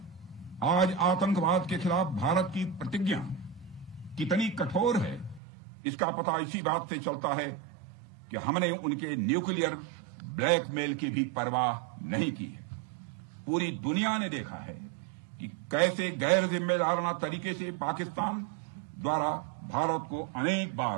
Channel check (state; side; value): drops out; left; at 5.4 s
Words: आज आतंकवाद के खिलाफ भारत की प्रतिज्ञा कितनी कठोर है इसका पता इसी बात से चलता है कि हमने उनके न्यूक्लियर ब्लैकमेल की भी परवाह नहीं की है। पूरी दुनिया ने देखा है कि कैसे गैर जिम्मेदाराना तरीके से पाकिस्तान द्वारा भारत को अनेक